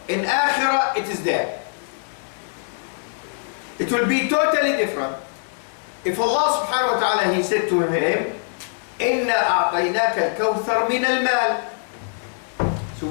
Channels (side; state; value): right; silent; digital silence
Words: In akhirah, it is there. It will be totally different if Allah subhanahu wa ta'ala, He said to him, إِنَّا أَعْطَيْنَاكَ الْكَوْثَرَ مِنَ الْمَالِ. So